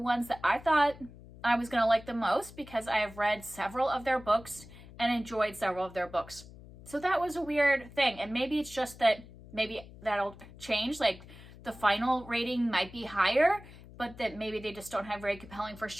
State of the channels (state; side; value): noise; left; hum, 18 dB below the sound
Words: that I thought I was going to like the most, because I have read several of their books and enjoyed several of their books. So that was a weird thing. And maybe it's just that maybe that'll change. The final rating might be higher, but that maybe they just don't have very compelling first